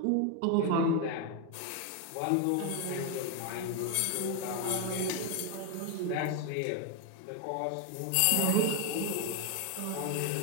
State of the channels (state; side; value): different; both; correlation 0.01